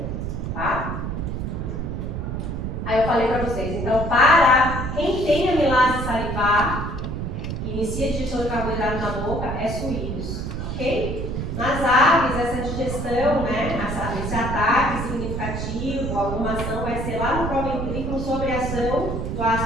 Tá? Aí eu falei para vocês, então, para quem tem amilase salivar, que inicia a digestão de carboidrato na boca, é suínos. Ok? Nas aves, essa digestão, né, esse ataque significativo, alguma ação vai ser lá no proventrículo sobre a ação do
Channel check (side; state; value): right; noise; rumble, 4 dB below the sound